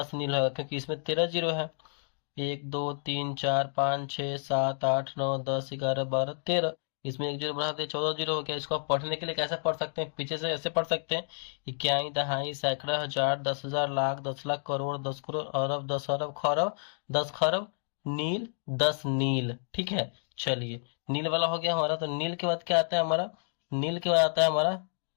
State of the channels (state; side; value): silent; right; digital silence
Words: नील होगा क्योंकि इसमें 13 जीरो है। 1 2 3 4 5 6 7 8 9 10 11 12 13। इसमें एक जीरो बढ़ा दे, 14 जीरो हो गया। इसको आप पढ़ने के लिए कैसे पढ़ सकते हैं, पीछे से ऐसे पढ़ सकते हैं, इक्याई दहाई सैकड़ा हजार 10,000 लाख 10 लाख करोड़ 10 करोड़ अरब 10 अरब खरब 10 खरब नील 10 नील। ठीक है, चलिए नील वाला हो गया हमारा। तो नील के बाद क्या आता है हमारा, नील के बाद आता है हमारा